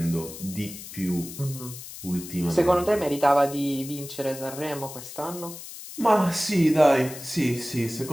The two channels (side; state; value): left; noise; hiss, 13 dB below the sound